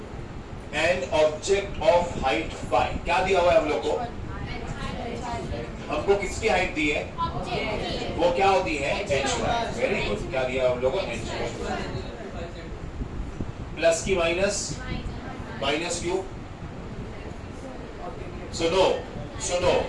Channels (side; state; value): both; identical; correlation 1.00